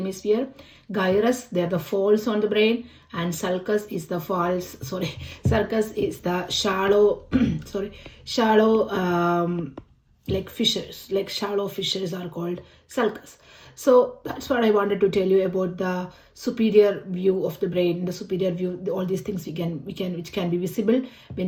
Gyrus, they are the folds on the brain, and sulcus is the sulcus is the shallow, like fissures, like shallow fissures are called sulcus. So that's what I wanted to tell you about the superior view of the brain. The superior view, all these things which can be visible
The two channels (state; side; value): identical; both; correlation 1.00